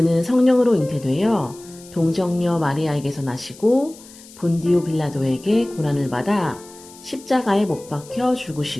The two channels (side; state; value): left; noise; hiss, 21 dB below the sound